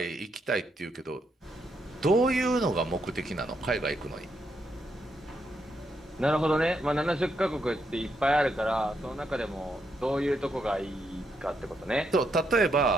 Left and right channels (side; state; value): both; normal; correlation 0.79